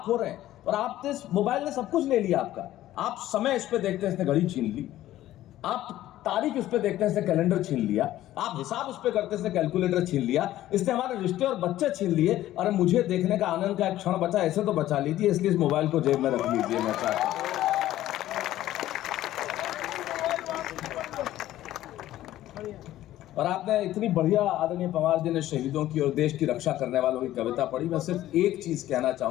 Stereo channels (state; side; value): quieter; right; 14.1 dB